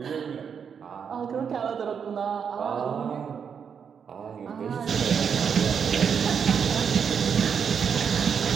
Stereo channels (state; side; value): quieter; left; 7.0 dB